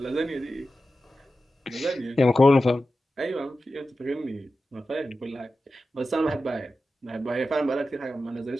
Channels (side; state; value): both; normal; correlation 0.93